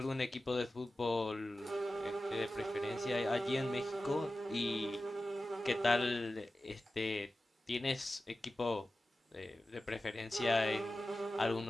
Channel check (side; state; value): both; normal; correlation 0.95